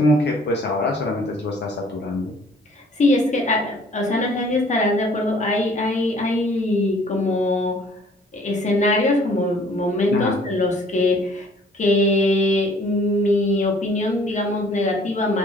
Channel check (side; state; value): both; normal; correlation 0.57